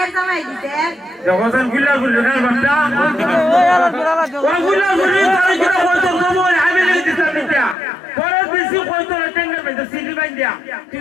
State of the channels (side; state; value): right; drops out; at 7.8 s